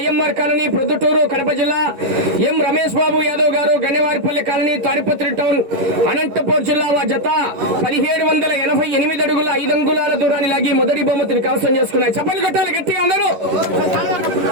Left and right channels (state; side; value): late; left; 11 ms